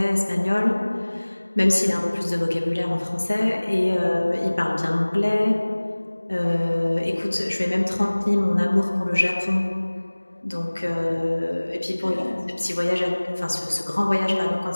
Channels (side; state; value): both; inverted; correlation -1.00